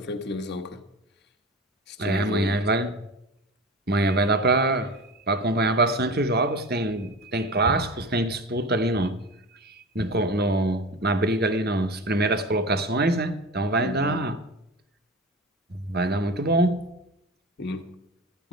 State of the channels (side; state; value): both; normal; correlation 0.31